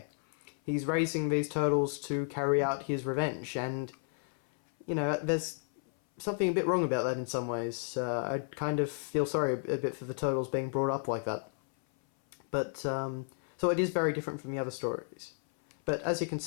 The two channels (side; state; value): right; silent; 56 dB below the other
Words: He's raising these turtles to carry out his revenge, and, there's something a bit wrong about that in some ways. I kind of feel sorry a bit for the turtles being brought up like that. But, so it is very different from the other stories. But as you can